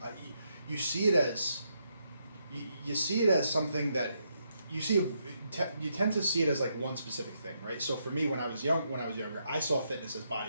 you see it as you see it as something that you tend to see it as like one specific thing, right? So for me, when I was younger, I saw fitness as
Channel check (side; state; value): both; inverted; correlation -0.79